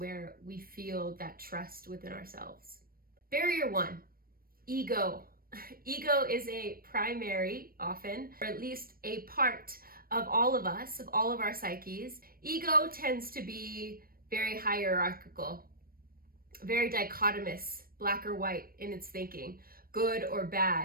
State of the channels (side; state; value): left; late; 0.43 ms